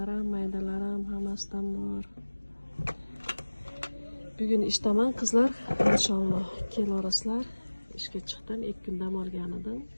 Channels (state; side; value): inverted; both; correlation -1.00